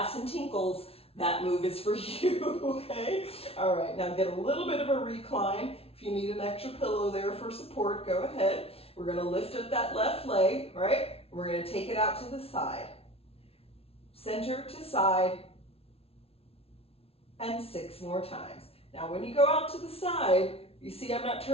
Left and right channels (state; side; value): late; right; 0.28 ms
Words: and tinkles, that move is for you, okay? All right, now get a little bit of a recline. If you need an extra pillow there for support, go ahead. We're gonna lift up that left leg, right? We're gonna take it out to the side. Center to side, and 6 more times. Now when you go out to the side, you see I'm not